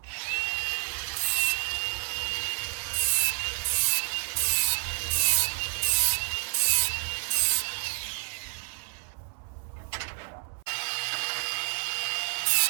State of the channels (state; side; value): silent; left; 58 dB below the other